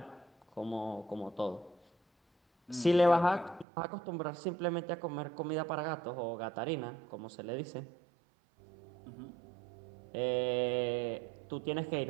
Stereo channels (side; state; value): left; drops out; at 3.7 s